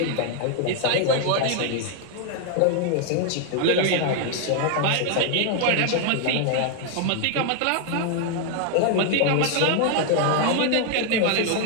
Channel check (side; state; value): both; different; correlation 0.00